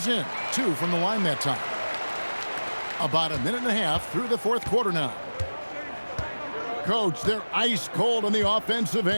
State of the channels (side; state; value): both; inverted; correlation -1.00